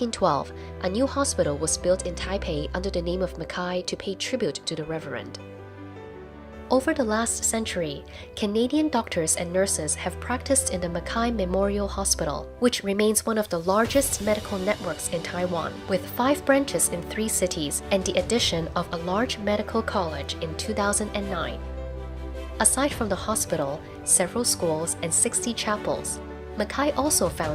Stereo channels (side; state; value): both; identical; correlation 1.00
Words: a new hospital was built in Taipei under the name of Mackay to pay tribute to the Reverend. Over the last century, Canadian doctors and nurses have practiced in the Mackay Memorial Hospital, which remains one of the largest medical networks in Taiwan, with 5 branches in 3 cities and the addition of a large medical college in 2009. Aside from the hospital, several schools, and 60 chapels, Mackay also